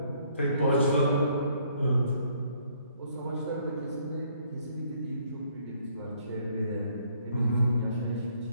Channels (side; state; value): both; inverted; correlation -0.65